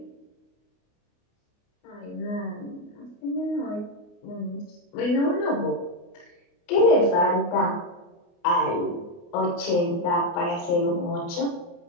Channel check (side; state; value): right; late; 29 ms